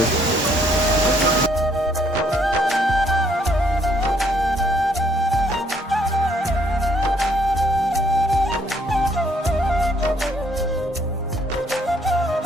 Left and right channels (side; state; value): both; normal; correlation 0.67